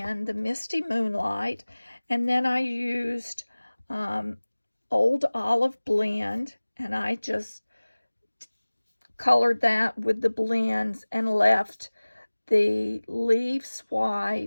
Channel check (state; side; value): inverted; both; correlation -1.00